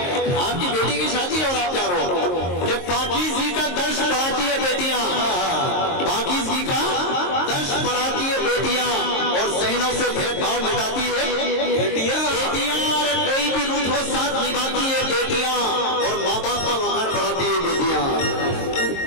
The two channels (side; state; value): right; late; 22 ms